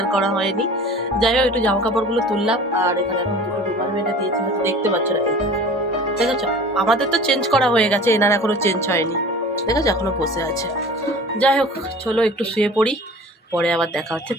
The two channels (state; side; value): normal; both; correlation 0.41